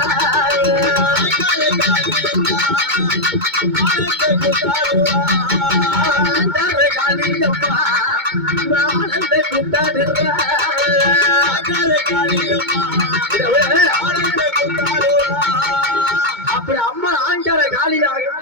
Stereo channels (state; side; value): late; left; 2.2 ms